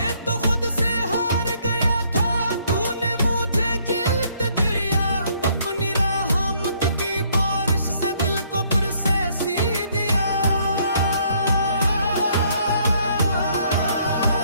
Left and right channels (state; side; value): inverted; both; correlation -0.66